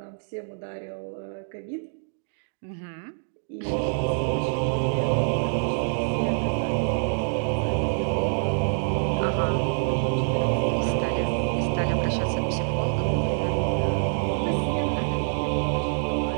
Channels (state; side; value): silent; left; digital silence